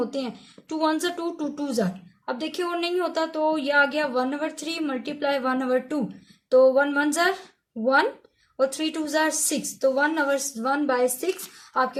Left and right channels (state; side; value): identical; both; correlation 1.00